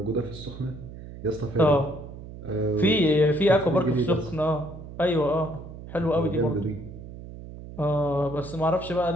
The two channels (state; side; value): noise; right; hum, 13 dB below the sound